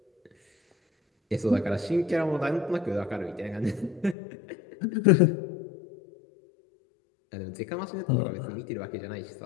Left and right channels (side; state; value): right; drops out; at 4.2 s